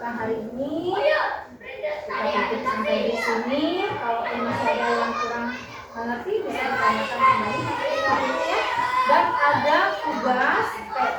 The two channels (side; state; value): both; identical; correlation 1.00